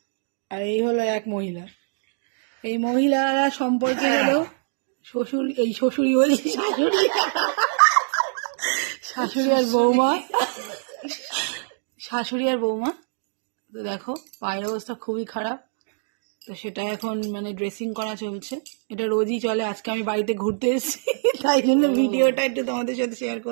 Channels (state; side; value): silent; left; digital silence